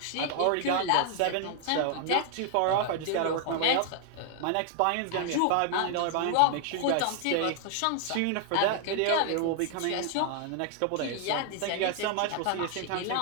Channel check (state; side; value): different; both; correlation 0.00